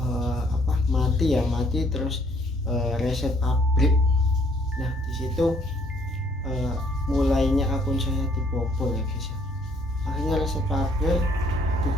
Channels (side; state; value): both; normal; correlation 0.64